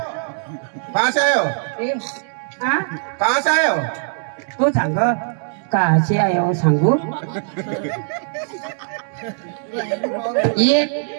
कहाँ से आए हो? कहाँ से आए हो? तू सांग कहाचे आए हो सांगू ये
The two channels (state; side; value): silent; left; 65 dB below the other